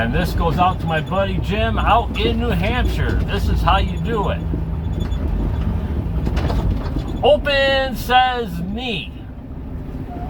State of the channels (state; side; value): identical; both; correlation 1.00